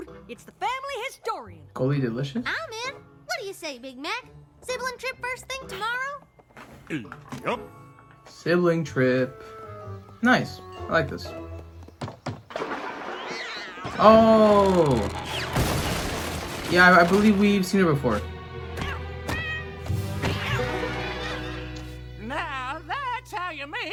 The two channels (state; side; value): identical; both; correlation 1.00